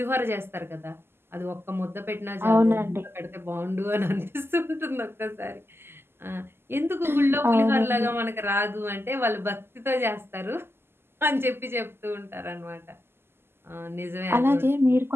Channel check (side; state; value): left; late; 0.12 ms